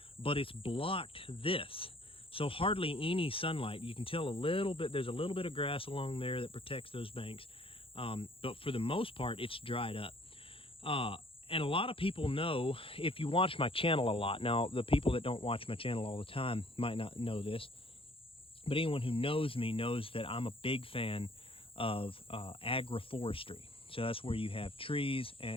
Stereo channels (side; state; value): right; late; 0.26 ms